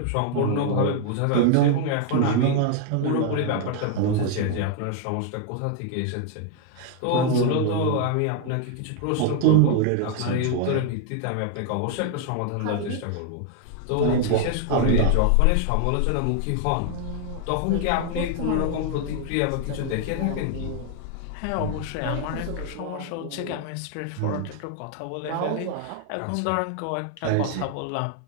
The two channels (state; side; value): different; both; correlation 0.00